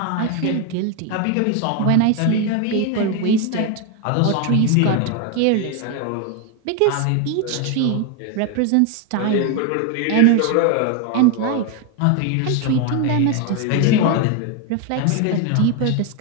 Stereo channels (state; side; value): different; both; correlation 0.01